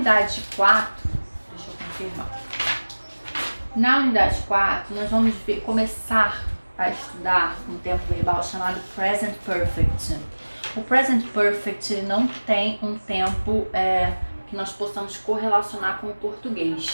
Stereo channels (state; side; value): inverted; both; correlation -1.00